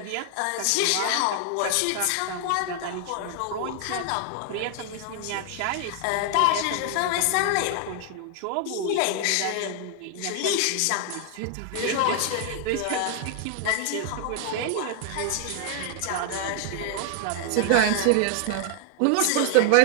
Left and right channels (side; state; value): both; different; correlation 0.00